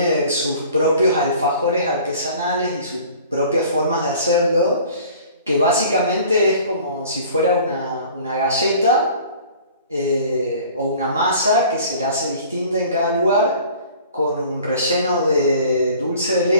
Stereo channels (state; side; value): inverted; both; correlation -0.48